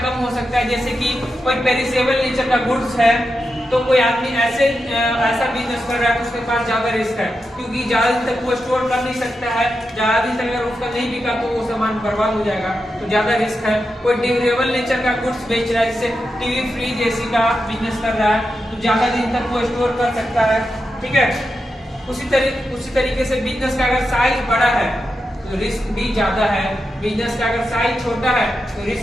कम हो सकता है। जैसे कि कोई पेरिसेबल नेचर का गुड्स है, तो कोई आदमी ऐसा बिजनेस कर रहा है तो उसके पास ज्यादा रिस्क है, क्योंकि ज्यादा दिन तक वो स्टोर कर नहीं सकता है। ज्यादा दिन तक अगर उसका नहीं बिका तो वो सामान बर्बाद हो जाएगा, तो ज्यादा रिस्क है। कोई ड्यूरेबल नेचर का गुड्स बेच रहा है, जैसे टीवी फ्रिज एसी का बिजनेस कर रहा है, तो ज्यादा दिन तक वो स्टोर कर सकता है। ठीक है, उसी तरीके से बिजनेस का अगर साइज बड़ा है तो रिस्क भी ज्यादा है, बिजनेस का अगर साइज छोटा है तो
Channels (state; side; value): normal; both; correlation 0.88